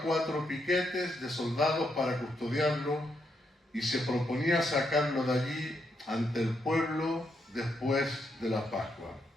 4 piquetes de soldados para custodiarlo, y se proponía sacarlo de allí ante el pueblo después de la Pascua.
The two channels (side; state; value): both; normal; correlation 0.79